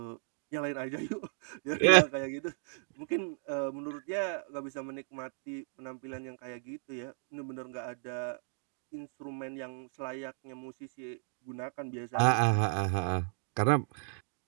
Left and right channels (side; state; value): left; silent; digital silence